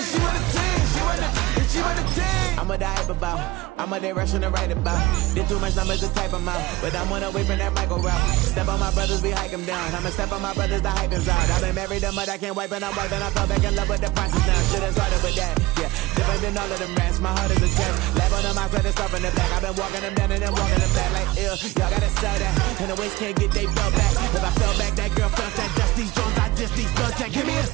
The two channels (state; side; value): quieter; left; 19.6 dB